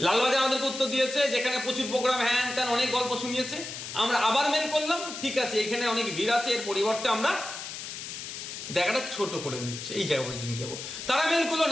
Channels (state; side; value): noise; left; hiss, 8 dB below the sound